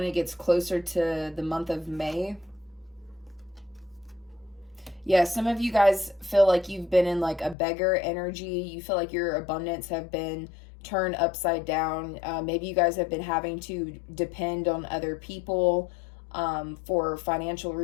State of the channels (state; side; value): drops out; right; at 7.6 s